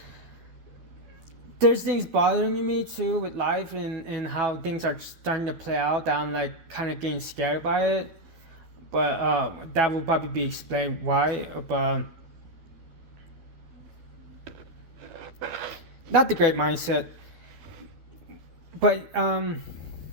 things bothering me too with life and how things are starting to play out, that I'm like kind of getting scared by it. But that will probably be explained why. But not the great mindset. But I'm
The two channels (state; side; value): late; left; 12 ms